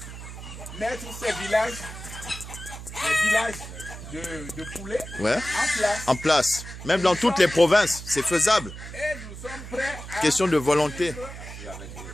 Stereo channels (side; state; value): right; noise; hum, 12 dB below the sound